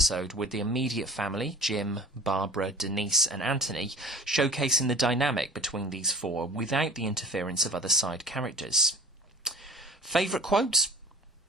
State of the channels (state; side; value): normal; both; correlation 0.43